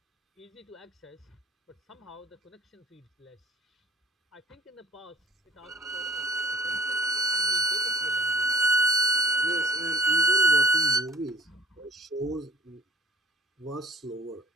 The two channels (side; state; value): both; normal; correlation 0.51